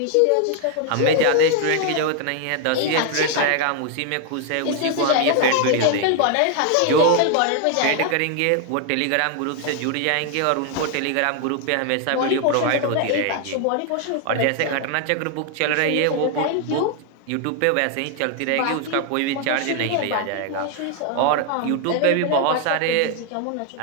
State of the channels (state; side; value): different; both; correlation 0.00